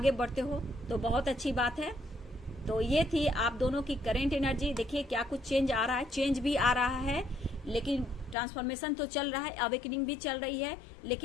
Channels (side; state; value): right; drops out; at 8.3 s